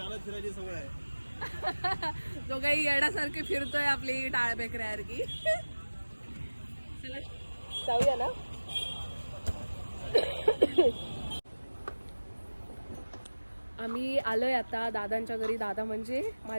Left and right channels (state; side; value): inverted; both; correlation -1.00